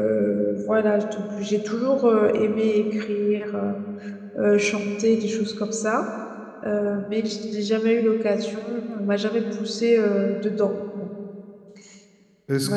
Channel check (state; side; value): identical; both; correlation 1.00